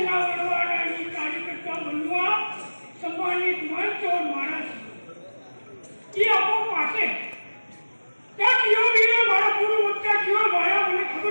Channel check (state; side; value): inverted; both; correlation -1.00